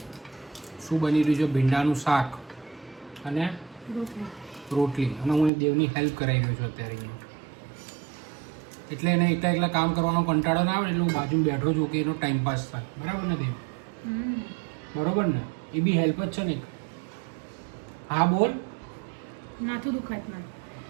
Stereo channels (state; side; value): drops out; left; at 5.5 s